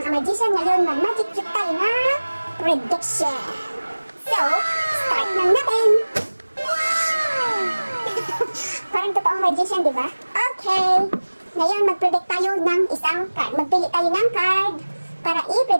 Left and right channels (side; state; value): both; inverted; correlation -1.00